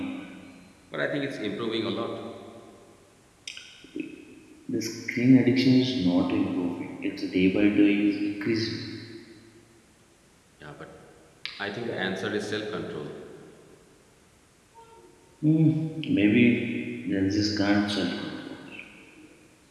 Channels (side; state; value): both; identical; correlation 1.00